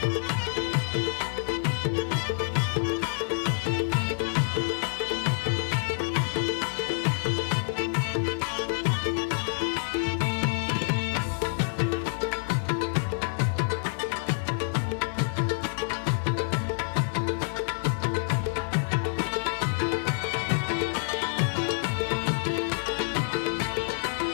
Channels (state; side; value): silent; right; digital silence